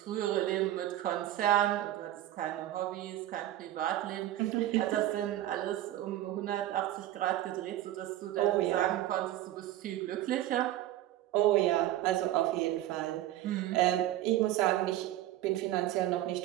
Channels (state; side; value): quieter; left; 13.7 dB